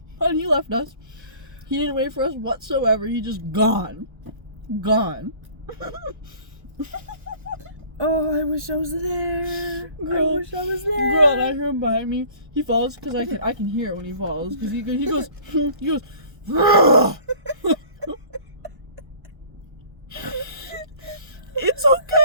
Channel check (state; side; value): late; left; 1.1 ms